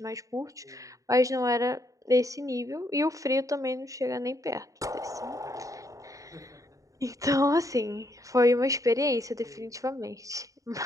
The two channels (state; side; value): late; left; 0.16 ms